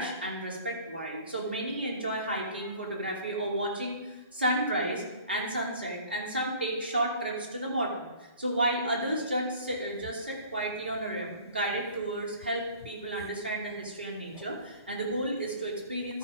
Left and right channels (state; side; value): inverted; both; correlation -0.48